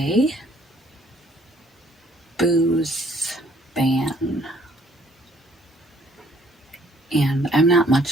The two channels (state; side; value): normal; both; correlation 0.62